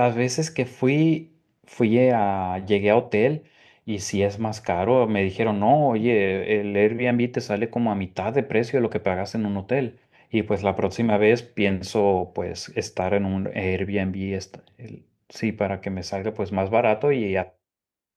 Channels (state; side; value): identical; both; correlation 1.00